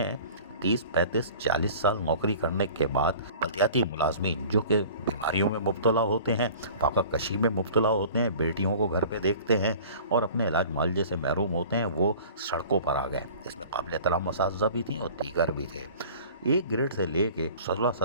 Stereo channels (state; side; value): inverted; both; correlation -0.44